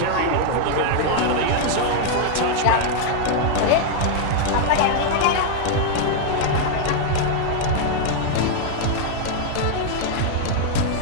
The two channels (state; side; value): different; both; correlation 0.00